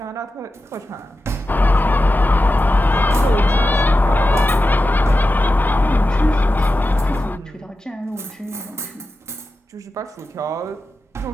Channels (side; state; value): both; normal; correlation 0.92